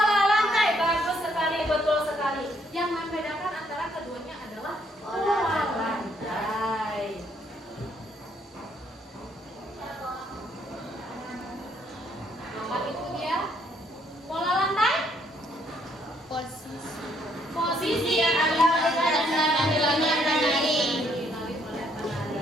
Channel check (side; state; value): both; normal; correlation 0.69